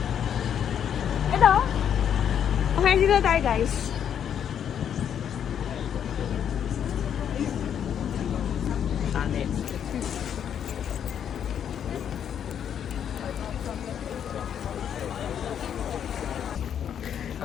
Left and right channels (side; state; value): right; quieter; 8.8 dB